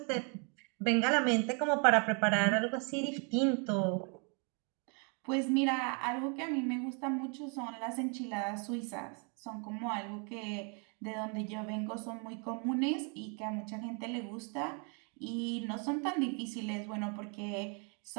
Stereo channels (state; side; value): quieter; left; 37.2 dB